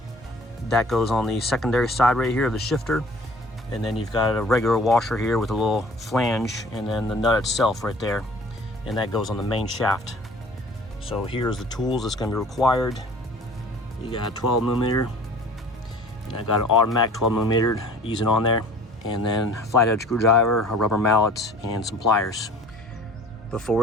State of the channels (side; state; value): both; normal; correlation 0.48